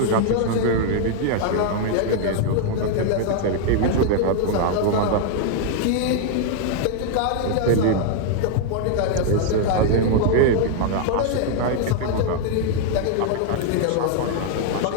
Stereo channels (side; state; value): both; different; correlation 0.00